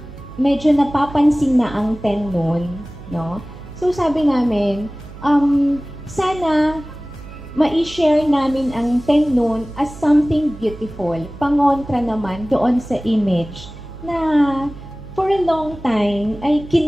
medyo napapansin na ang Ten Moon, no? So, sabi namin, sana ma-share namin ang Ten Moon as something beautiful. Pangontra naman doon sa image na for a long time ay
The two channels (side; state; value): right; noise; hum, 16 dB below the sound